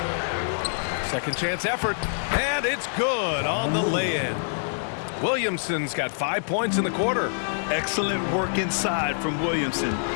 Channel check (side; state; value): right; silent; digital silence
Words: Second chance effort, and it's good on the lay-in. Williamson's got 5 points in the quarter. Excellent work inside from Williamson.